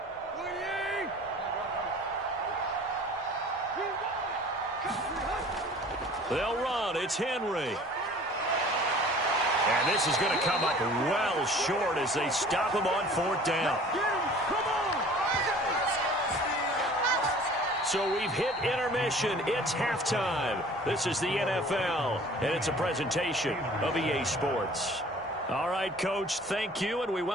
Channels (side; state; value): both; normal; correlation 0.48